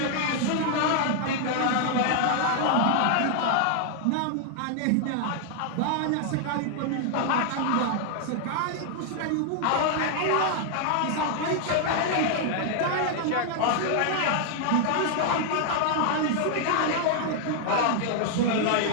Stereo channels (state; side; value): different; both; correlation 0.00